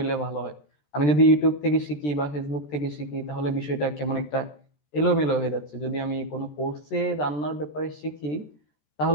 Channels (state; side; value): late; right; 13 ms